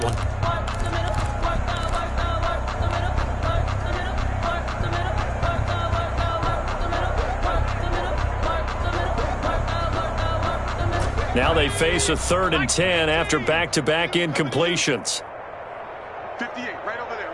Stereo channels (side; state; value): both; identical; correlation 1.00